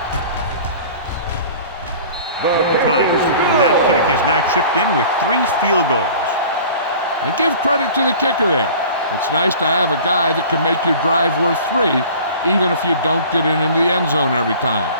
Times. That kick is now chipped in with 3 field goals. And give credit to the kicker there. It's nice to have a guy that can make your drive worth 3, even if you don't get it into the end zone every time.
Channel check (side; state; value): both; inverted; correlation -0.44